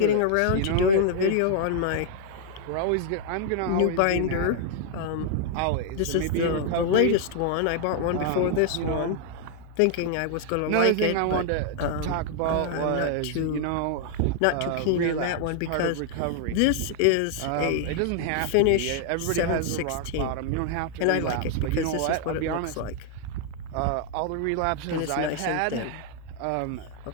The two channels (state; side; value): different; both; correlation 0.00